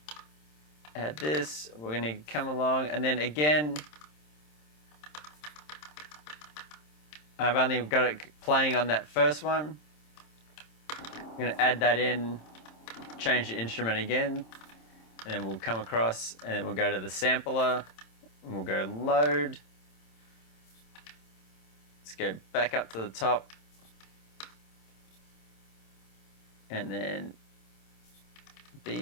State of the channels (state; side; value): late; right; 27 ms